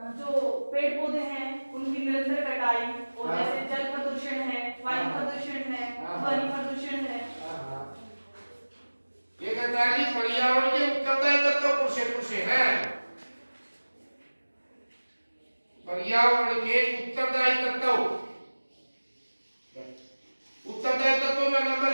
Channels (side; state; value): both; inverted; correlation -1.00